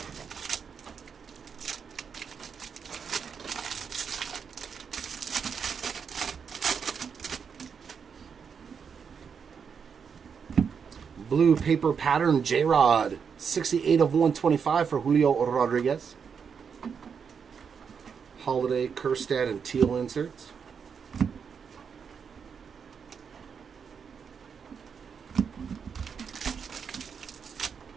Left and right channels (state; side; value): quieter; left; 6.5 dB